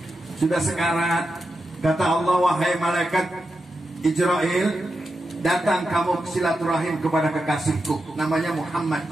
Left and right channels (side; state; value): both; normal; correlation 0.88